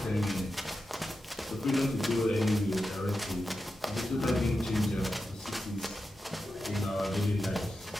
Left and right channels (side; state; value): both; normal; correlation 0.90